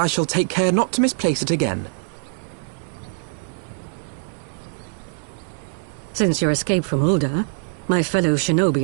shall take care not to misplace it again. Since your escape from Ulda, my fellow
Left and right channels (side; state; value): left; silent; 63 dB below the other